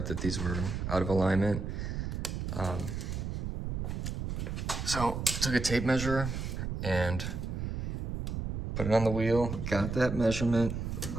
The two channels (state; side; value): noise; right; rumble, 4 dB below the sound